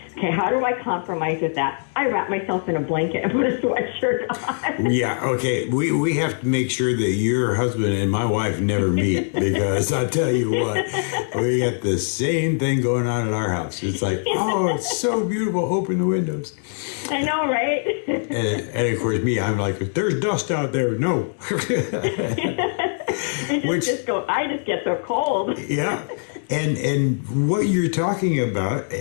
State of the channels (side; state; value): right; silent; digital silence